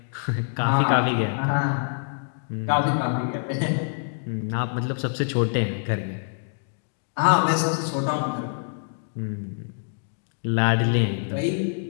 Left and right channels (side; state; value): right; silent; digital silence